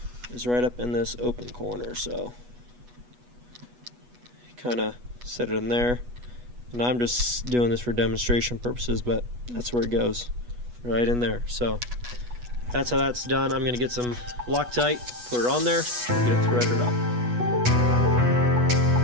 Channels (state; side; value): late; left; 8.2 ms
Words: Is right up in this open corner. So kind of set it in there, and I'm just doing this for demonstration purposes, but that's where it goes, right in there. So that's how that's done. I'm going to get some Loctite, put it on there, get it threaded up.